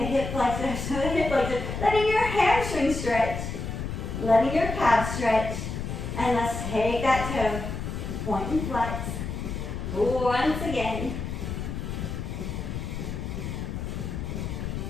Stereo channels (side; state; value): left; noise; rumble, 5 dB below the sound